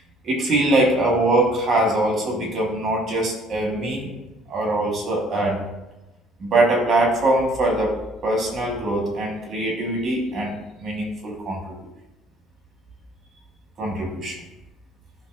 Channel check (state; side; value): normal; both; correlation 0.59